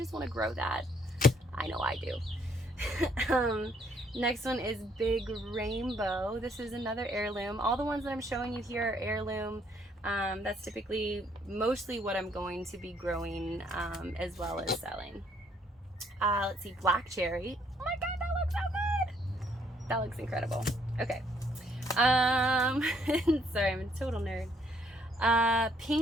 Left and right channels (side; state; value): both; normal; correlation 0.67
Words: want to grow that? I know I do. Next one is Big Rainbow. This is another heirloom. All the ones that I'm showing you here are heirloom. That's typically mostly what I'm going to be growing as well as selling. Let's see, black cherry. Oh my god, that looks so good. That looks incredible. Okay. Sorry, I'm a total nerd.